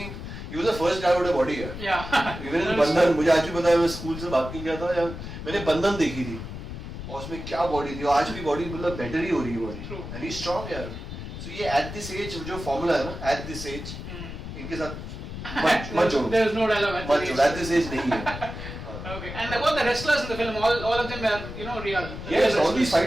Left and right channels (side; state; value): left; noise; rumble, 9 dB below the sound